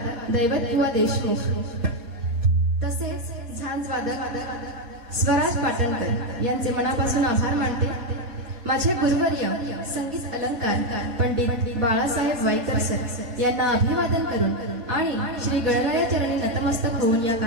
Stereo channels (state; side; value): late; left; 4.2 ms